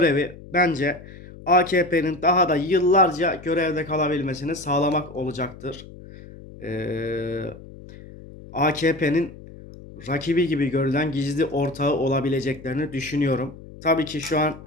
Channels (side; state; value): left; noise; hum, 17 dB below the sound